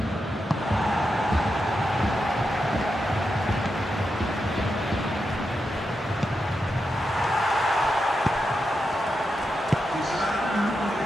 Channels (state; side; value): normal; both; correlation 0.87